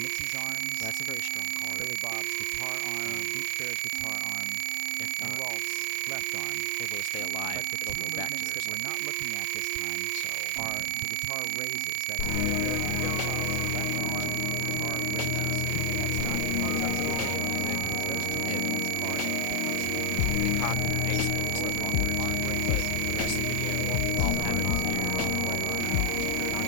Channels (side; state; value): both; different; correlation 0.00